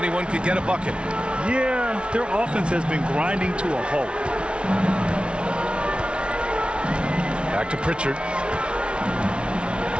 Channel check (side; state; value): left; late; 0.058 ms